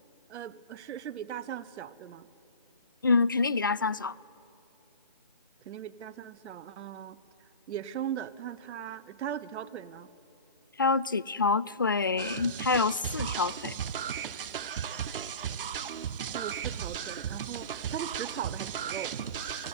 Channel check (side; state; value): both; inverted; correlation -0.34